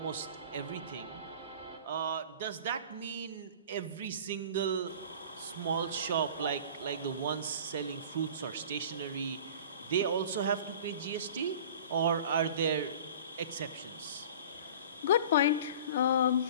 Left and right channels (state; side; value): inverted; both; correlation -0.42